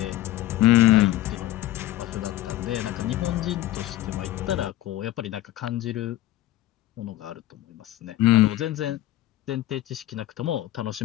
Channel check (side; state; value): right; quieter; 15.0 dB